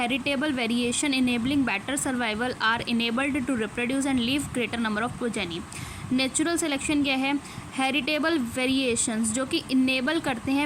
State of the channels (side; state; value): both; identical; correlation 1.00